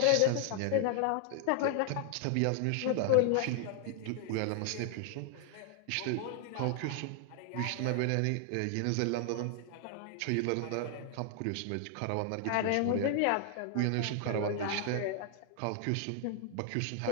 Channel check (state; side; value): different; both; correlation 0.00